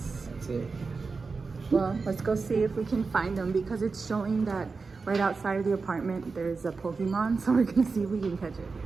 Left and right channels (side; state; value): left; quieter; 4.4 dB